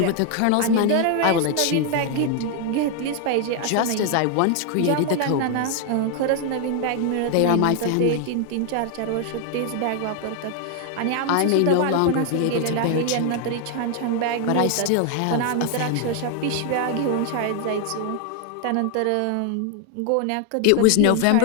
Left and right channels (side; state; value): both; different; correlation 0.00